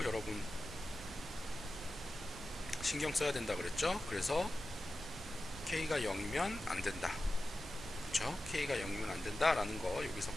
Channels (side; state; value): both; normal; correlation 0.93